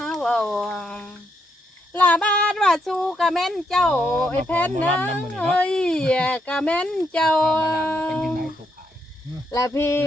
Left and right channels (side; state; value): both; normal; correlation 0.78